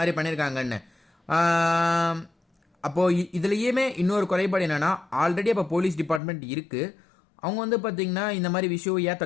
பண்ணியிருக்காங்கன்னு. அப்போது இதுலேயுமே இன்னொரு குறைபாடு என்னென்னா, ஆல்ரெடி அப்போ போலீஸ் டிபார்ட்மெண்ட் இருக்குது, அவங்க வந்து பார்த்திங்கன்னா இந்த மாதிரி விஷயம் ஏன்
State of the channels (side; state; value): right; drops out; at 6.2 s